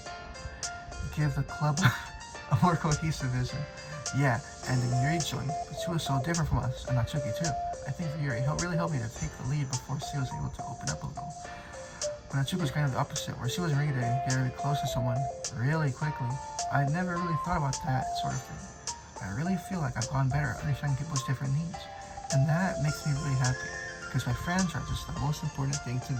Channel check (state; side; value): identical; both; correlation 1.00